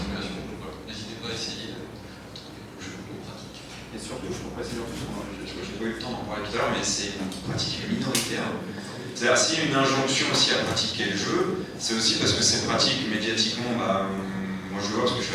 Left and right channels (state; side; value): identical; both; correlation 1.00